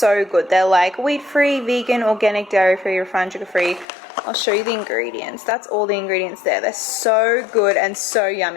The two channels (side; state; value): right; drops out; at 3.9 s